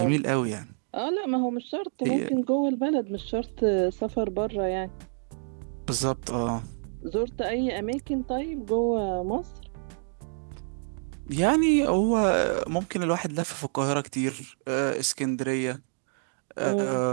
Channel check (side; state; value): left; silent; digital silence